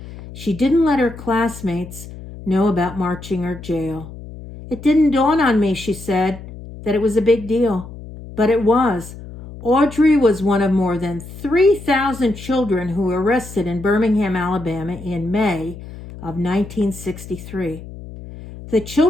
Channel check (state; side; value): noise; left; hum, 14 dB below the sound